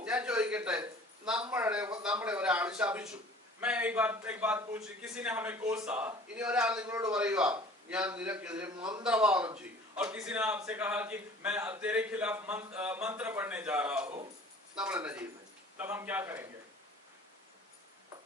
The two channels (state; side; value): normal; both; correlation 0.48